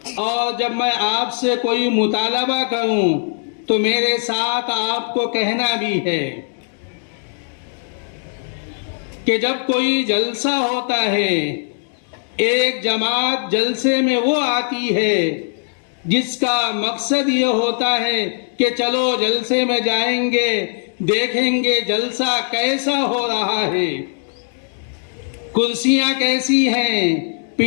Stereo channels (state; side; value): silent; right; 65 dB below the other